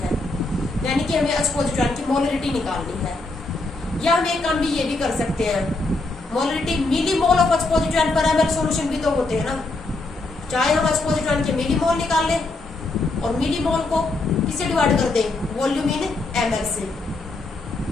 हैं, यानी कि हमें H पॉजिटिव आयन की मोलरिटी निकालनी है। या हम एक काम भी ये भी कर सकते हैं, molarity millimole of H positive ion per ml solution भी तो होते हैं ना, चाहे हम H पॉजिटिव आयन के मिली मोल निकाल लें और मिली मोल को किससे डिवाइड कर दें? वॉल्यूम इन ml से।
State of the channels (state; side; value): quieter; right; 3.2 dB